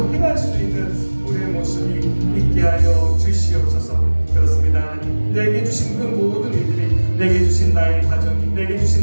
행할 수 있는 우리의 모습이 있게 하여 주시옵소서. 그렇습니다. 하나님, 내게 주신 그 모든 일들이, 내게 주신 나의 가정이, 내게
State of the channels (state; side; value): inverted; both; correlation -1.00